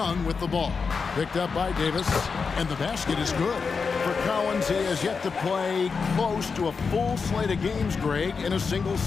with the ball, picked up by Davis, and the basket is good. For Collins, he has yet to play close to a full slate of games, Greg, in a single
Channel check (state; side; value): quieter; right; 5.2 dB